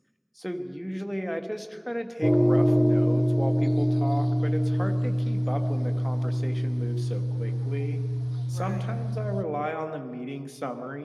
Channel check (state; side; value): identical; both; correlation 1.00